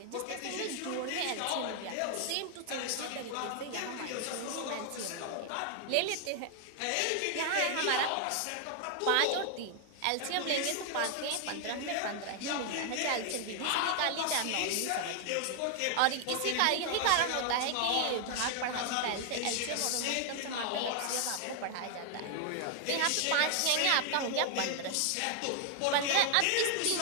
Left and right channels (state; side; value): different; both; correlation 0.00